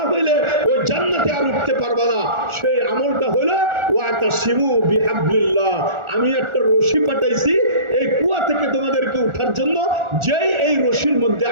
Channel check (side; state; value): left; late; 1.4 ms